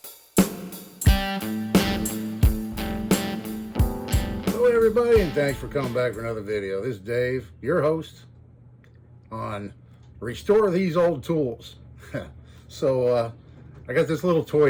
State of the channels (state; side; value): identical; both; correlation 1.00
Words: Hello everybody, and thanks for coming back for another video. This is Dave, your host on Restore These Old Tools. So I got this little